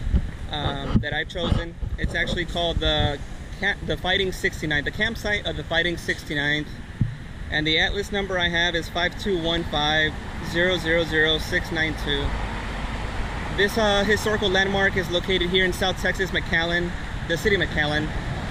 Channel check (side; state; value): both; identical; correlation 1.00